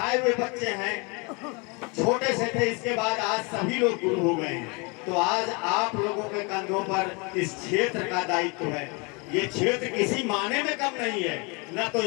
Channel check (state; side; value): quieter; right; 30.6 dB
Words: हुए बच्चे हैं, छोटे से थे, इसके बाद आज सभी लोग गुरु हो गए हैं। तो आज आप लोगों के कंधों पर इस क्षेत्र का दायित्व है। ये क्षेत्र किसी माने में कम नहीं है, न तो